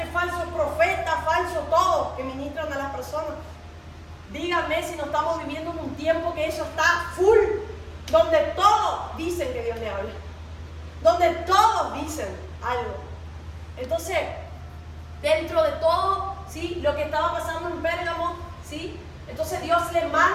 falsos profetas, falsos todos que ministran a las personas. Díganme si no estamos viviendo en un tiempo que eso está full, donde todos dicen que Dios le habla, donde todos dicen algo. Entonces, dentro de todo, ¿sí?, lo que estaba pasando en Pérgamo, ¿sí?, entonces Dios le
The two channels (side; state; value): both; identical; correlation 1.00